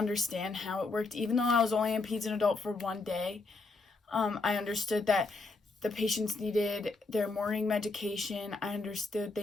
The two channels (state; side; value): quieter; right; 3.6 dB